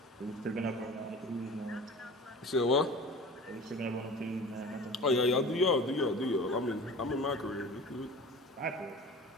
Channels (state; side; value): normal; both; correlation 0.40